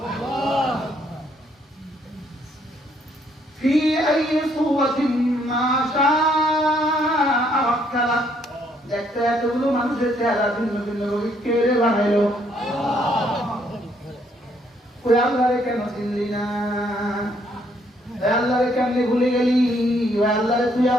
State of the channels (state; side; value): normal; both; correlation 0.69